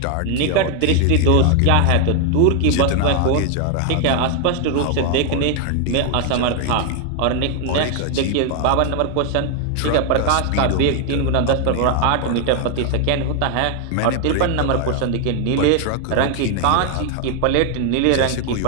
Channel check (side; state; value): both; different; correlation 0.00